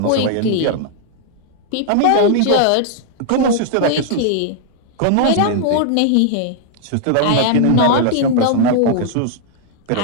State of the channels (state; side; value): different; both; correlation -0.01